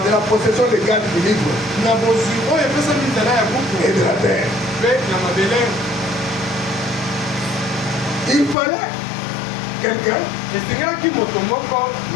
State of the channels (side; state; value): right; drops out; at 8.6 s